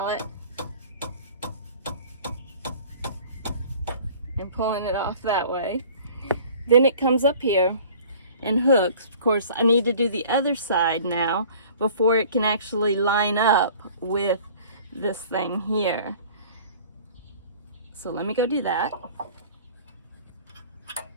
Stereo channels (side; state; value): both; inverted; correlation -0.48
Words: and pulling it off that way. Then it comes up here and hooks. Of course, I need to do the other side now before it can actually line up with this thing here. So let me go do that.